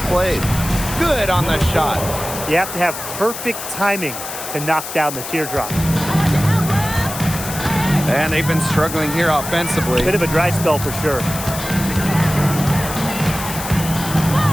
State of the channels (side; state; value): left; noise; hiss, 8 dB below the sound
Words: played. Good on the shot. You have to have perfect timing to knock down the teardrop. And they've been struggling here offensively. Bit of a dry spell for sure.